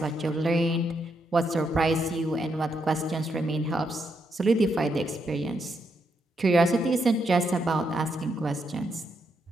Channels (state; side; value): normal; both; correlation 0.79